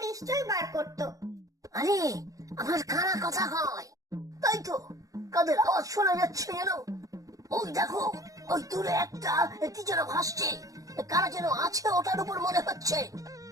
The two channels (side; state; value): left; late; 0.17 ms